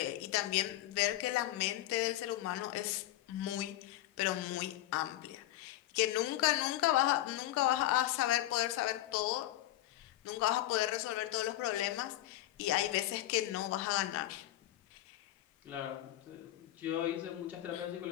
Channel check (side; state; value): right; quieter; 14.9 dB